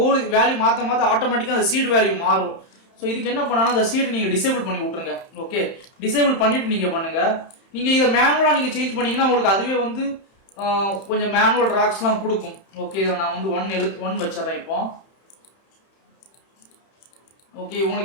வேல்யூ மாற்ற ஆட்டோமேட்டிக்காக அந்த சீடு வேல்யூ மாறும். ஸோ இதுக்கு என்ன பண்ணாலும் அந்த சீடு நீங்கள் டிசேபிள் பண்ணி விட்ருங்க. ஓகே, டிசேபிள் பண்ணிவிட்டு நீங்கள் பண்ணுங்கள். நீங்கள் இதை மேனுவலாக நீங்கள் சேஞ்ச் பண்ணிங்கன்னா உங்களுக்கு அதுவே வந்து கொஞ்சம் மேனுவல் ராக்ஸ்லாம் கொடுக்கும். ஓகே, இதில் நான் வந்து 1 வச்சிட்றேன் இப்போ. ஓகே,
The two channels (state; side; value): late; right; 31 ms